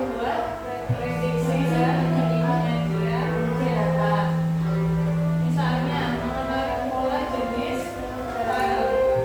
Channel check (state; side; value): identical; both; correlation 1.00